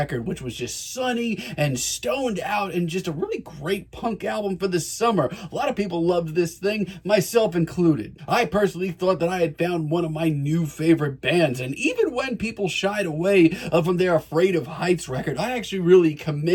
which was just sunny and stoned out and just a really great punk album for the summer. A lot of people loved this thing, myself included. I personally thought that I had found one of my new favorite bands, and even when people shied away from their Afraid of Heights record, I actually really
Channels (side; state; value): both; identical; correlation 1.00